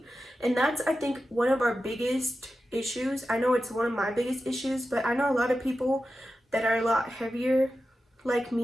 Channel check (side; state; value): both; normal; correlation 0.92